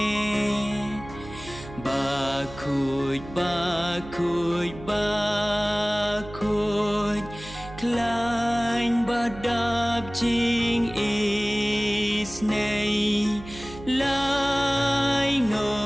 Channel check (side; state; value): right; noise; hum, 15 dB below the sound